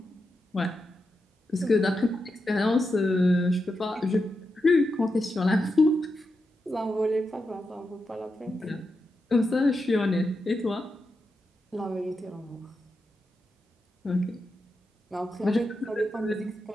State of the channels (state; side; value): normal; both; correlation 0.87